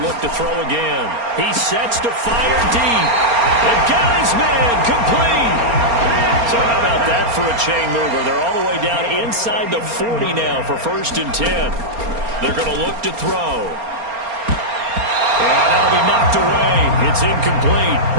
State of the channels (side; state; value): left; late; 4.3 ms